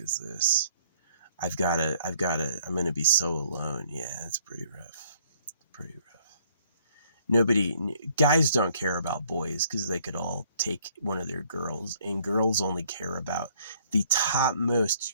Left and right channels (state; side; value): inverted; both; correlation -0.62